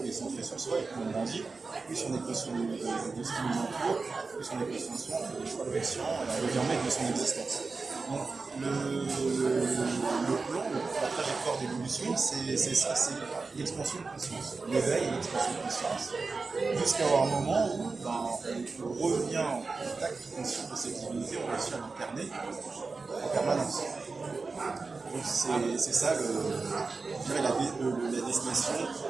on est centré sur soi, et plus on grandit, plus on est conscient de ce qui nous entoure, plus on est conscient de soi, on fait des choix conscients, et on devient maître de son existence. Donc le plan, la trajectoire d'évolution, c'est ça, c'est l'expansion de conscience, l'éveil et l'expansion de conscience, jusqu'à avoir un moment où on revient en contact conscient de cette divinité, on réussit à l'incarner en permanence. Donc c'est ça, je dirais, la destination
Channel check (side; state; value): left; quieter; 4.1 dB